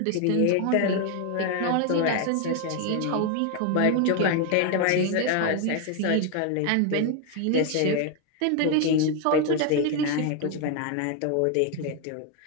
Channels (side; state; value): both; different; correlation 0.01